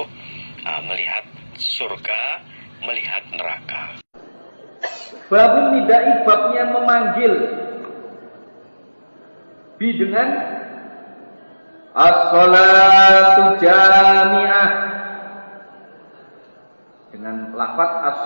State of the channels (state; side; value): inverted; both; correlation -1.00